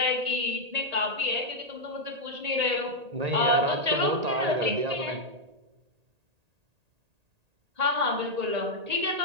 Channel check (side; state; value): left; late; 1.8 ms